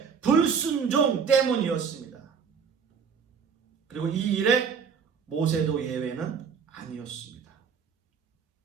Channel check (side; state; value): left; quieter; 6.4 dB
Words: 불순종 때문이었습니다. 그리고 이 일에 모세도 예외는 아니었습니다.